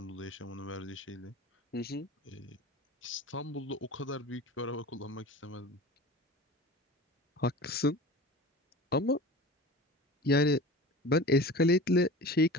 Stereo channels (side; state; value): both; normal; correlation 0.36